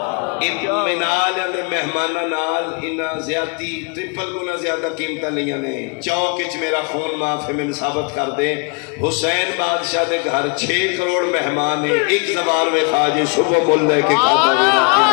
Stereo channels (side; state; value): right; quieter; 33.4 dB